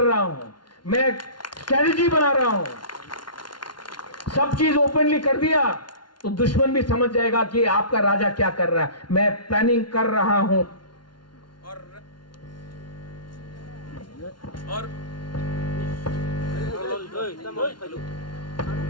हूं, मैं स्ट्रेटजी बना रहा हूं। सब चीज ओपनली कर दिया तो दुश्मन भी समझ जाएगा कि आपका राजा क्या कर रहा है। मैं प्लानिंग कर रहा हूं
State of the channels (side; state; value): right; late; 0.71 ms